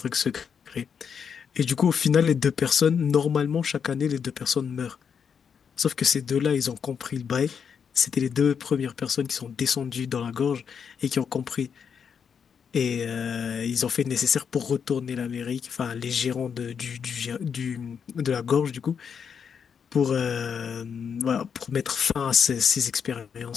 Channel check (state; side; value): quieter; right; 7.0 dB